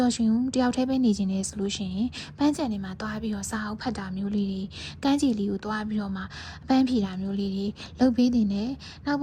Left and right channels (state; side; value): identical; both; correlation 1.00